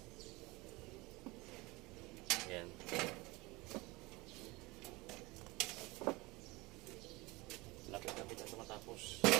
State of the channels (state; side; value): quieter; left; 23.2 dB